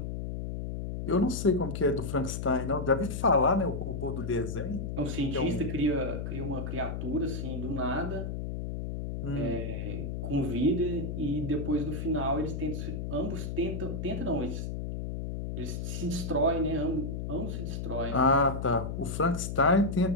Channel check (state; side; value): noise; left; hum, 4 dB below the sound